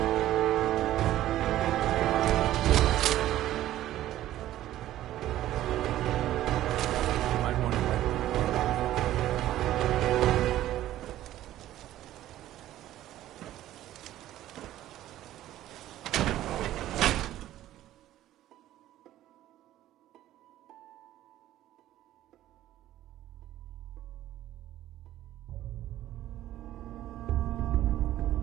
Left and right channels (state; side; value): quieter; left; 13.7 dB